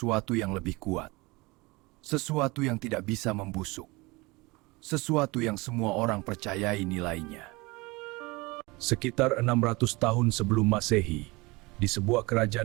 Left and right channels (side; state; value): left; quieter; 24.0 dB